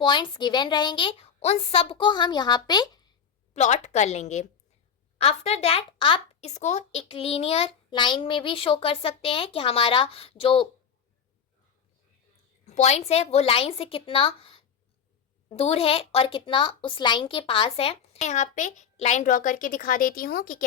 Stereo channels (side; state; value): right; quieter; 7.2 dB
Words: पॉइंट्स गिवन रहेंगे उन सब को हम यहाँ पे प्लॉट कर लेंगे। आफ्टर दैट आप इसको एक लीनियर लाइन में भी शो कर सकते हैं कि हमारा जो पॉइंट्स है वो लाइन से कितना दूर है और कितना उस लाइन के पास है। मैं यहाँ पे लाइन ड्रॉ करके दिखा देती हूँ कि